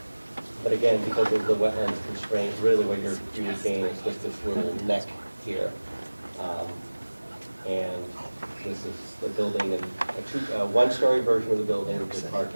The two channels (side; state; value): both; inverted; correlation -1.00